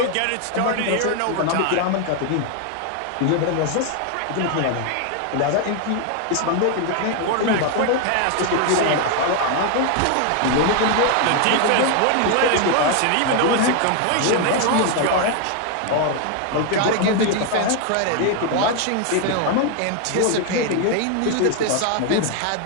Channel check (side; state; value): both; different; correlation 0.01